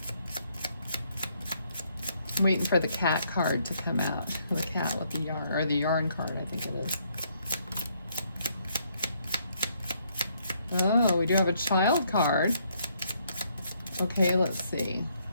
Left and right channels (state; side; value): inverted; both; correlation -0.71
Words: I'm waiting for the cat card to come out. For the cat with the yarn, or the yarn card, I think it is. Oh, we do have a child card. Okay, let's see.